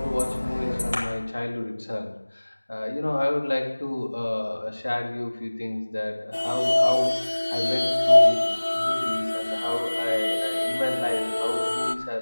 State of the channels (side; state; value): both; inverted; correlation -1.00